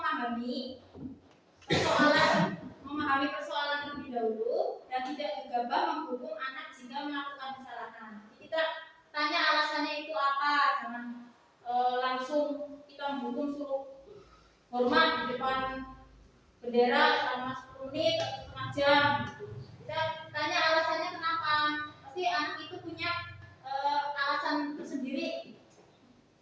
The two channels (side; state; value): both; identical; correlation 1.00